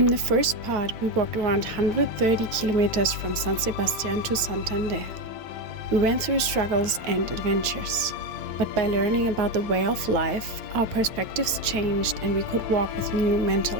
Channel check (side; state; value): left; late; 9.0 ms